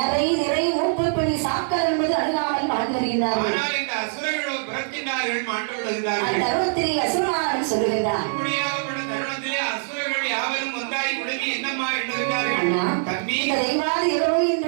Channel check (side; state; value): left; silent; 63 dB below the other